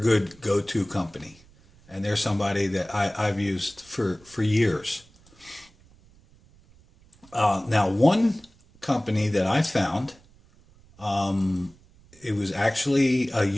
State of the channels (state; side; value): noise; right; rumble, 28 dB below the sound